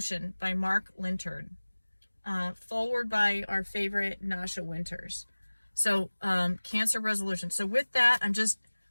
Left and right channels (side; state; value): both; inverted; correlation -1.00